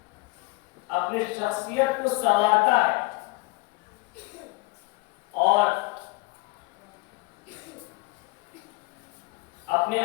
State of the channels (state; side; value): quieter; right; 25.3 dB